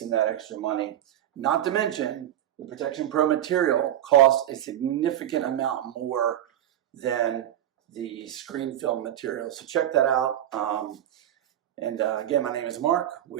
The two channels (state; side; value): quieter; left; 11.6 dB